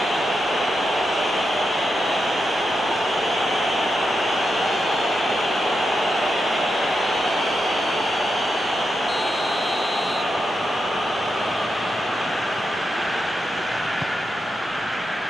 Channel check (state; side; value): normal; both; correlation 0.86